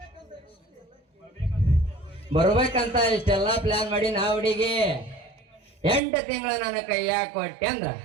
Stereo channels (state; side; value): drops out; left; at 6.0 s